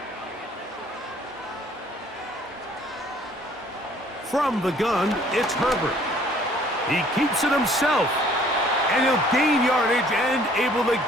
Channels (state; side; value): normal; both; correlation 0.57